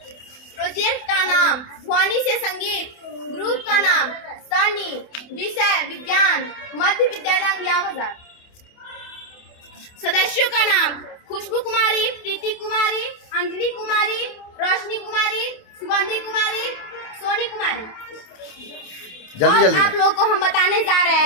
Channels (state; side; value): late; right; 28 ms